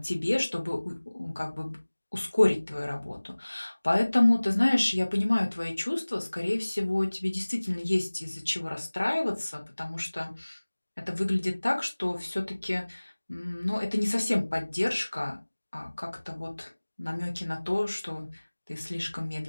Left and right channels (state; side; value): inverted; both; correlation -1.00